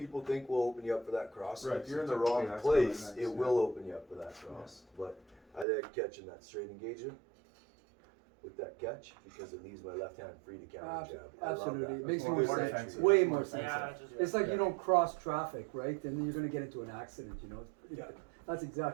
think will open you up for that cross, Right, if you're in so the wrong typically that's what I place, like, it yeah. will open you up for that cross. But I like catching that straight engagement with that catch because it leaves my left hand free to counter jab. I love Absolutely, that. it makes That's more more sense. defensive. Way more Yeah, sense. Yeah, just, It's like Yeah. you don't cross traffic, right? Then you're gonna get into an accident. You know. It's pretty Yeah. good. That's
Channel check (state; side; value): drops out; left; at 5.7 s